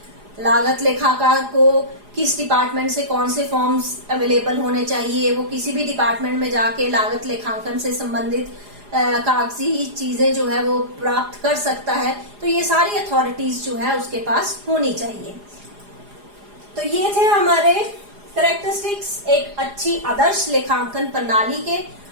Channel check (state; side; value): late; left; 4.9 ms